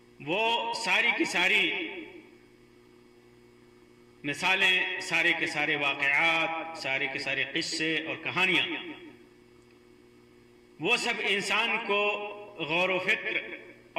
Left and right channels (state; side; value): identical; both; correlation 1.00